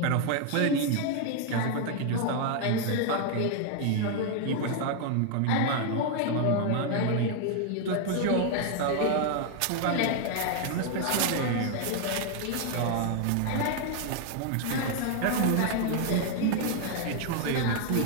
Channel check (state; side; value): different; both; correlation 0.00